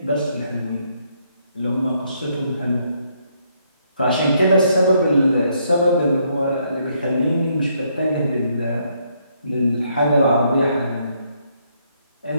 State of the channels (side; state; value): both; inverted; correlation -0.72